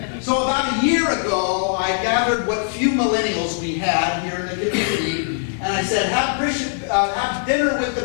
So about a year ago, I gathered what few millennials we had here in the community, and I said, have dinner with the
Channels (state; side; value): silent; right; digital silence